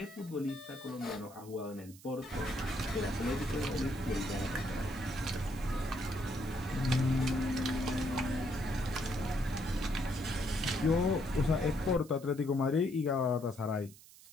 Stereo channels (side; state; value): right; noise; hiss, 21 dB below the sound